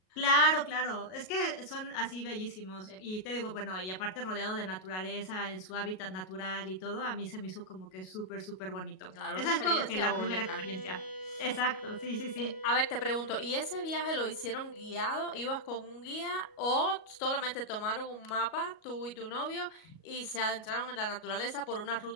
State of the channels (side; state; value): right; late; 38 ms